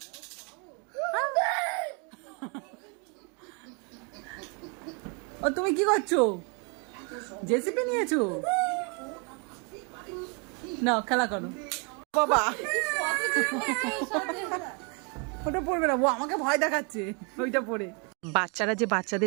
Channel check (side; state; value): left; quieter; 34.4 dB